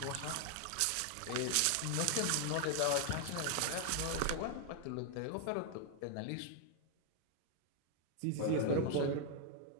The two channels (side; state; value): both; different; correlation 0.00